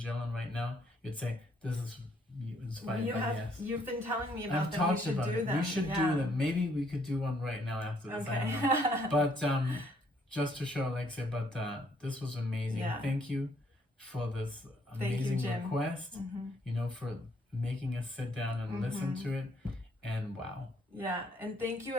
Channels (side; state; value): both; normal; correlation 0.67